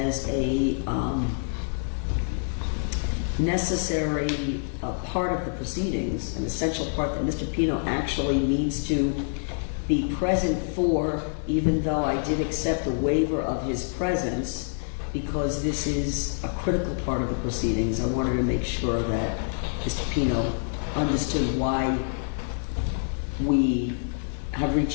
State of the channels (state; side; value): silent; right; digital silence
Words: a necessary part of the proceedings, an essential part that Mr. Pino actually needs to be present for, even though I did accept a waiver of his presence, because this is a critical part of the proceedings. I wanted to make sure that Mr. Pino understood why we have